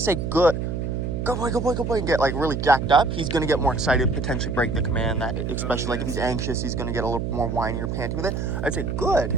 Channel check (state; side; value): noise; right; hum, 2 dB below the sound